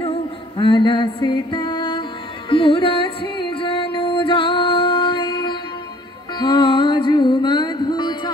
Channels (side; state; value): both; normal; correlation 0.56